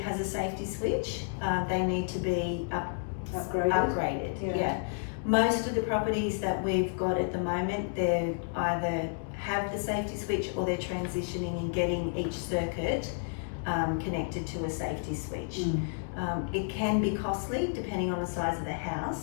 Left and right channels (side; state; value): right; silent; digital silence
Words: a safety switch. They need to be upgraded. Yeah. Most of the properties that we've got at the moment, they either have the safety switch or they're transitioning and getting each circuit connected to a safety switch. It can be costly depending on the size of the